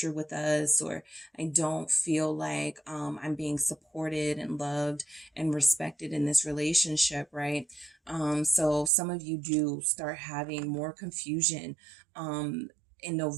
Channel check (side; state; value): left; drops out; at 8.9 s